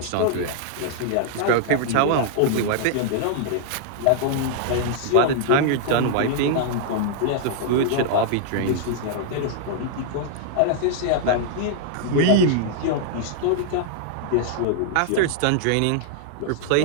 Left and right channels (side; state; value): both; different; correlation -0.01